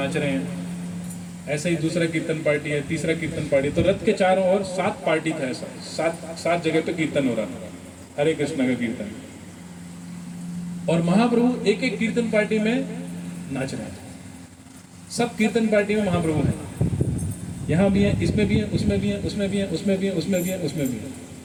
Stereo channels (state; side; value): identical; both; correlation 1.00